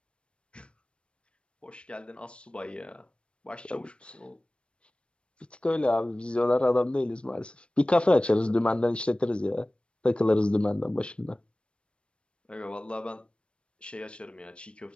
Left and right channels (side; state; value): right; late; 0.058 ms